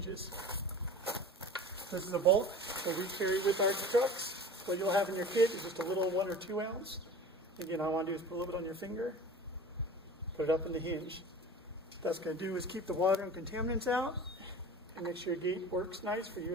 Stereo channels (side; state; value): both; normal; correlation 0.38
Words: This is a bulk that we carry with our trucks. What you'll have in your kit is just a little 1 or 2 ounce. Again, all I want to do is put a little bit on your finger. Put it up in the hinge. What that's going to do is keep the water and contaminants out and make sure your gate works nice for